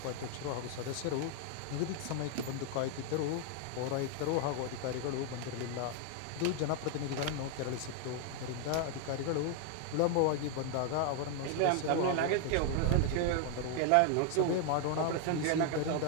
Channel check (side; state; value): both; different; correlation 0.00